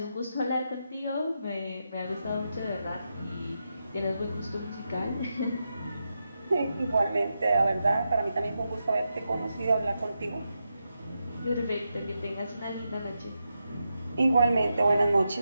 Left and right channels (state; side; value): inverted; both; correlation -0.87